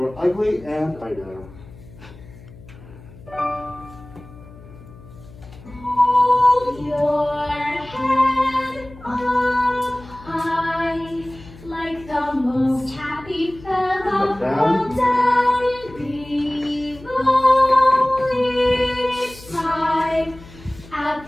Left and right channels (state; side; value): noise; left; hum, 20 dB below the sound